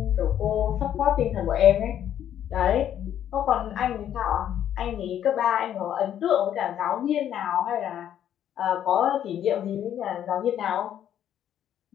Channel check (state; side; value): quieter; right; 10.4 dB